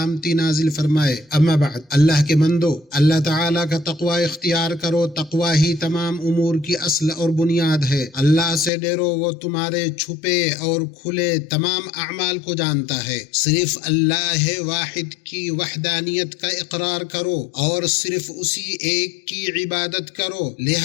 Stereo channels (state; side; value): drops out; right; at 8.7 s